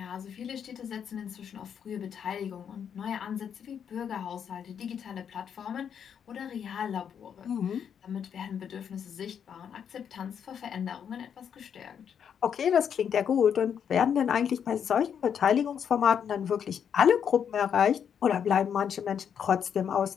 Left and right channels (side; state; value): right; quieter; 8.0 dB